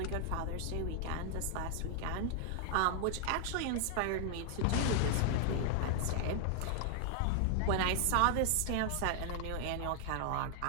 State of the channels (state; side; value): different; both; correlation 0.00